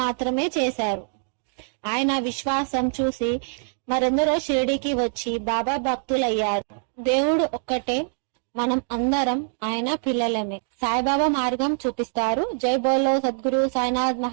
చేశారు. ఆయన విశ్వాసం చూసి మరెందరో షిరిడికి వచ్చి బాబా భక్తులయ్యారు. దేవుడు ఒక్కటే, మనం అందరం ఆయన పిల్లలమే. సాయిబాబా మార్గం చూపిస్తారు. జై బోలో సద్గురు సాయినాథ్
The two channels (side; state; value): left; silent; digital silence